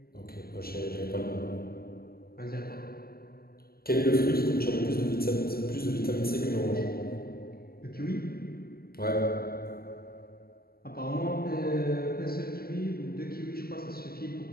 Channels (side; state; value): right; late; 0.44 ms